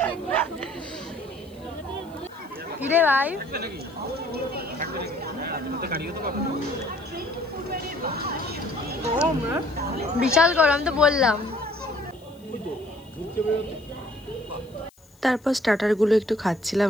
কিরে ভাই? বিশাল গরম তো বললাম। তারপর স্টার্টারগুলো একটু খাচ্ছিলাম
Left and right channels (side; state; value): left; noise; hiss, 30 dB below the sound